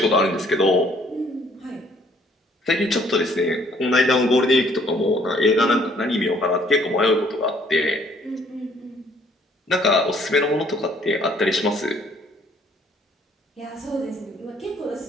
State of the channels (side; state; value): both; normal; correlation 0.62